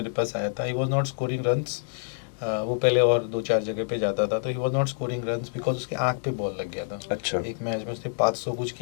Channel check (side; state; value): right; silent; digital silence